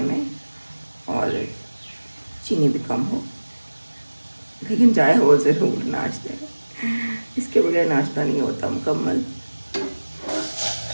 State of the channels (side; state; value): both; inverted; correlation -1.00